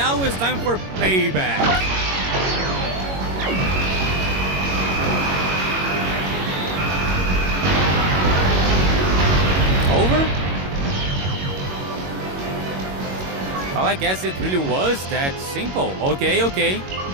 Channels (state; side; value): late; left; 21 ms